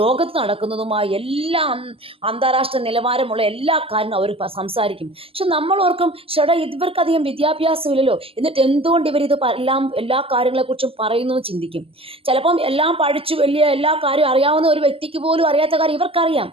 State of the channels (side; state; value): left; late; 0.27 ms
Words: നടക്കുന്നതുമായ എല്ലാ അന്താരാഷ്ട്ര നിലവാരമുള്ള എല്ലാ കാര്യങ്ങളും അവർ സംസാരിക്കും. പക്ഷെ നമ്മൾ ഓർക്കും, ചേട്ടാ ഇവർക്കധികം വിദ്യാഭ്യാസമില്ലല്ലോ, എന്നിട്ട് എന്തുകൊണ്ട് ഇവരിത് എല്ലാ കാര്യങ്ങളെക്കുറിച്ചും പറയുന്നു ചിന്തിക്കും. ചിലപ്പം എല്ലാം പഠിച്ചു വലിയ എല്ലാ കാര്യവും അറിയാവുന്ന ഒരു വ്യക്തിക്ക് പോലും അറിയാത്ത കാര്യം ഇവർക്കറിയാം.